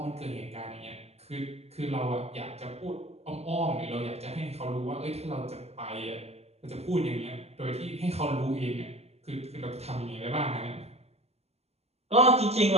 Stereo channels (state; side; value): late; left; 0.30 ms